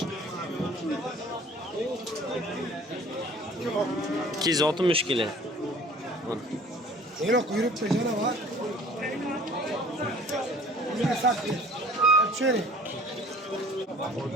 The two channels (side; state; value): both; normal; correlation 0.50